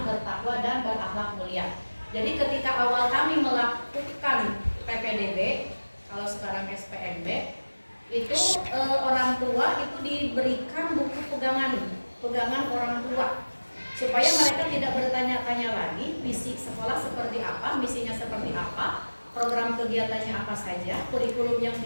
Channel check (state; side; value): inverted; both; correlation -1.00